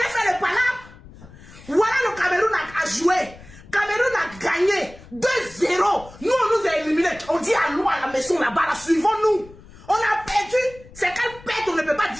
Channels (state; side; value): noise; left; rumble, 20 dB below the sound